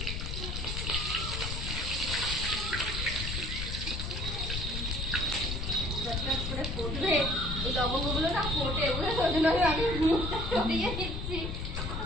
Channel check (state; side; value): noise; left; rumble, 4 dB below the sound